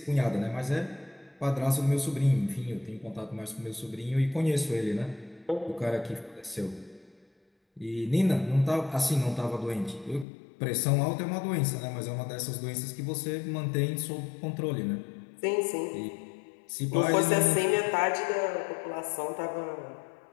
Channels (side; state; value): right; drops out; at 10.2 s